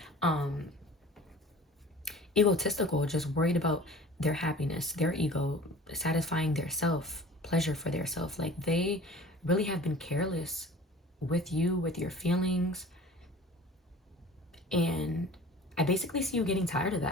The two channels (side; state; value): both; normal; correlation 0.43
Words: egotistical, just worried about their happiness, their ego, satisfying their self, pleasure for their self. Like, they really have been careless with you, with your feelings. And I basically see you getting tired of